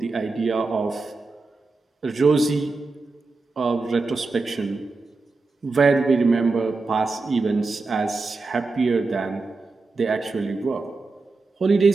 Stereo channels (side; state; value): left; quieter; 3.8 dB